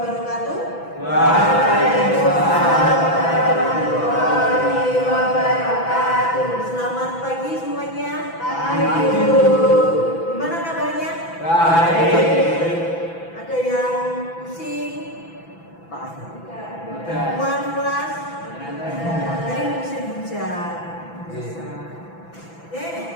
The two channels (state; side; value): late; right; 6.0 ms